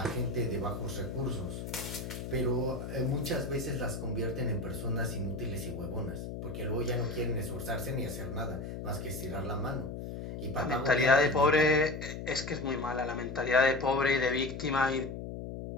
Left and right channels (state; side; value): noise; left; hum, 7 dB below the sound